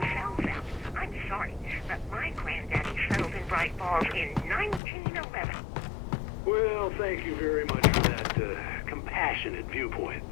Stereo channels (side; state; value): right; drops out; at 4.8 s